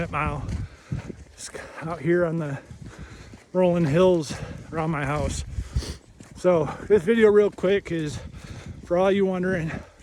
mile. Just out here on the rolling hills around my house. So this video real quick is for all you wondering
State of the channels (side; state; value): both; identical; correlation 1.00